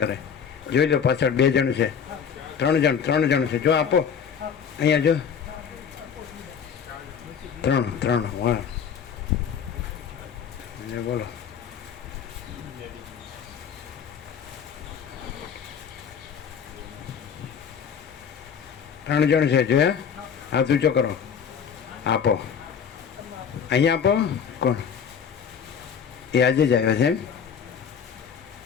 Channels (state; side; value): quieter; right; 7.2 dB